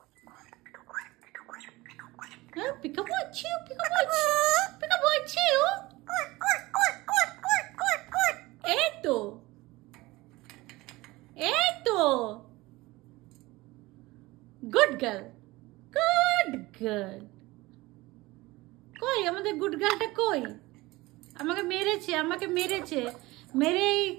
পিকাবু আছে, পিকাবু আছে, পিকাবু আছে ও, এই তো, এই তো গুড গার্ল, গুড গার্ল। কই আমাদের গুড গার্লটা কই? আমাকে মেরেছে, আমাকে মেরেছে, মেরে এই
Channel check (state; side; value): quieter; left; 20.5 dB